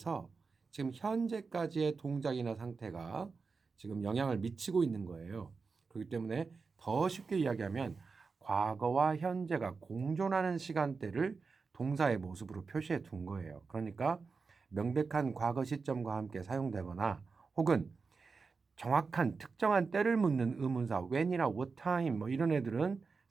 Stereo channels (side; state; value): left; quieter; 4.7 dB